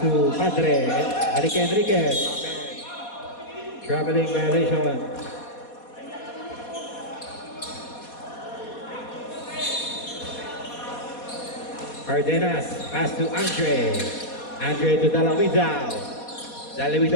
Padre. Enriquez. Traveling violation. Cardenas. Pass to Andre. Andre to Dalawidao.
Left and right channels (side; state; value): right; late; 4.2 ms